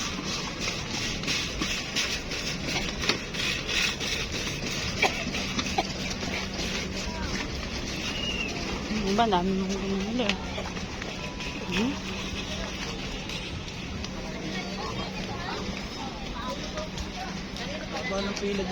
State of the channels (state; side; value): identical; both; correlation 1.00